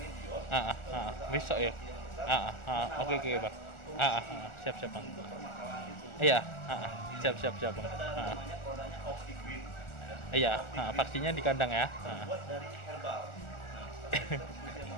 Besok ya? Oke Bang. Siap Bang. Iya, siap Bang. Namanya produknya OptiGreen. Iya, vaksinnya di kandang ya. Terbuat dari herbal.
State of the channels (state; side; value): late; right; 1.4 ms